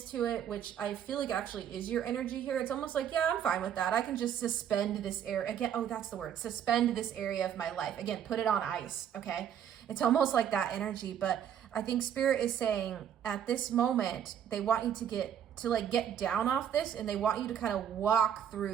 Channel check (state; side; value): quieter; left; 9.3 dB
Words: to it, which I feel like actually is your energy here. It's almost like, yeah, I'm fine with that. I can just suspend this area again. Oh, that's the word. Suspend this area of my life. Again, put it on ice. Okay. It's almost like that energy, but I think Spirit is saying at this moment, they want you to get down off this, and they want you to kind of walk